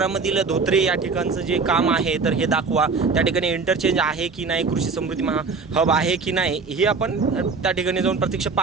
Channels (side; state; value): left; quieter; 4.6 dB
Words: मधील धोत्रे या ठिकाणचं जे काम आहे तर हे दाखवा, त्या ठिकाणी इंटरचेंज आहे की नाही, कृषी समृद्धी हब आहे की नाही, हे आपण त्या ठिकाणी जाऊन प्रत्यक्ष